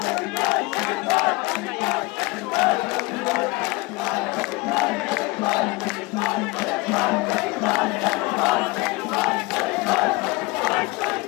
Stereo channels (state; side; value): quieter; right; 23.5 dB